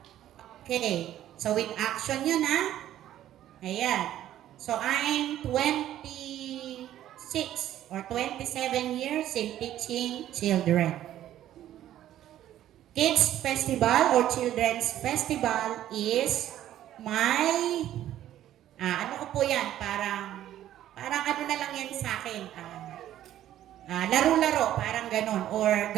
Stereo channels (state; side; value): quieter; left; 12.3 dB